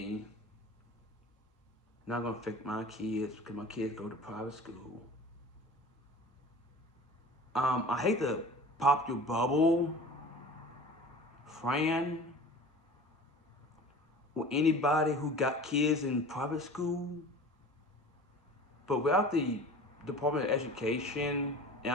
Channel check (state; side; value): normal; both; correlation 0.40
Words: Not gonna affect my kids because my kids go to private school. I hate to pop your bubble, Fran, or anybody who got kids in private school, but without the Department of Education, and